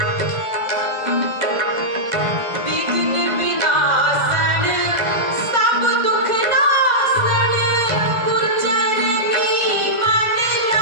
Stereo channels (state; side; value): late; left; 2.0 ms